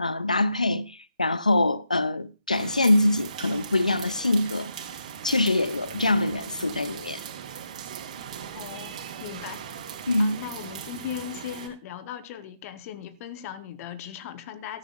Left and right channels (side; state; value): both; inverted; correlation -0.82